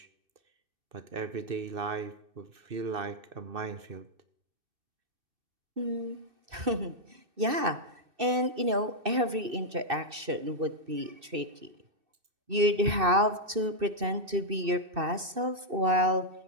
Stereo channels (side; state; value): left; late; 2.6 ms